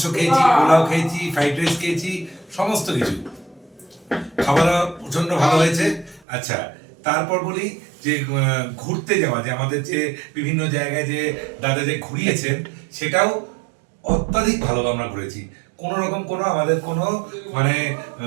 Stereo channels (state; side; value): drops out; left; at 6.2 s